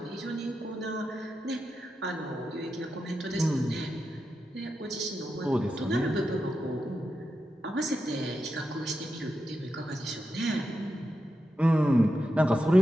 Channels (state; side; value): normal; both; correlation 0.88